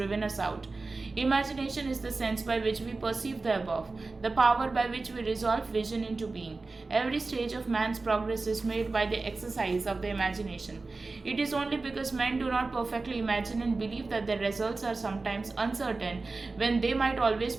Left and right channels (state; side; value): quieter; left; 3.7 dB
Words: us out. Imagination is the sense by which we perceive the above, the power by which we resolve vision into being. Every stage of man's progress is made by the exercise of the imagination. It is only because men do not perfectly imagine and believe that their results are sometimes uncertain when they might always